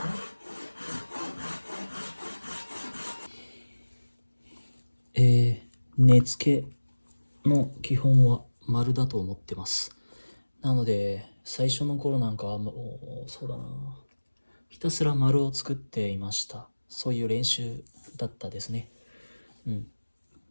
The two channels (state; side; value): inverted; both; correlation -1.00